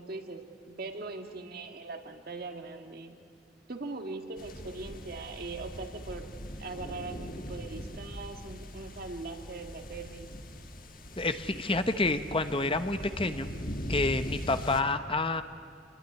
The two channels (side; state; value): both; normal; correlation 0.34